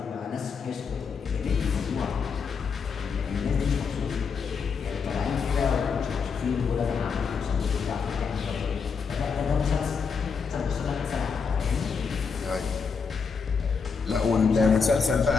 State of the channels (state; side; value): quieter; right; 5.6 dB